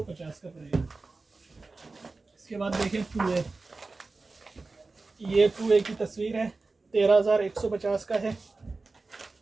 का पड़ेगा। इसके बाद देखें 2A। ये 2A की तस्वीर है, 13,150 का है।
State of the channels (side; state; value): left; quieter; 3.7 dB